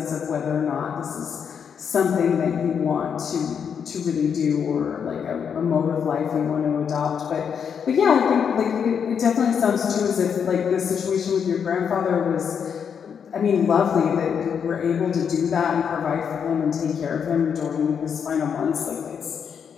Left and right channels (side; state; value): right; quieter; 7.2 dB